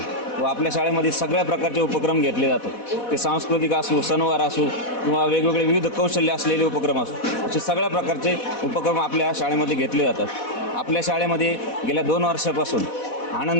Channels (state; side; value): late; right; 4.1 ms